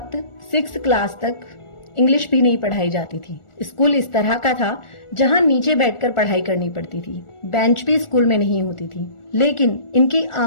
6th क्लास तक इंग्लिश भी नहीं पढ़ाई जाती थी। स्कूल इस तरह का था जहां नीचे बैठकर पढ़ाई करनी पड़ती थी। बेंच भी स्कूल में नहीं होती थी। लेकिन इनकी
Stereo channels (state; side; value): late; right; 1.4 ms